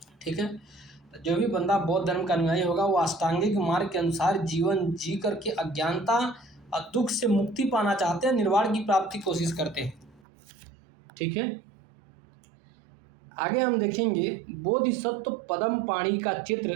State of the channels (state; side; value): drops out; left; at 10.2 s